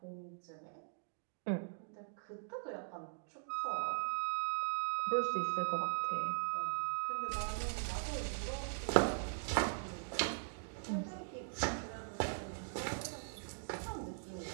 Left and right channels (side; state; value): left; silent; digital silence